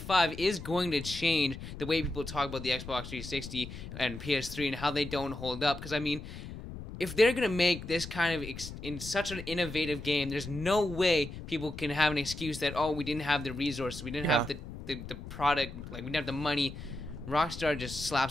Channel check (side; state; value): left; noise; rumble, 11 dB below the sound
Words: 5 is going to change the way people talk about the Xbox 360 and PS3 and how they don't hold up. Because, I mean, if they're going to make this kind of in such an innovative game, there's no way people can have an excuse that, we didn't have the resources, we didn't have the product, like, we didn't have the money. Rockstar just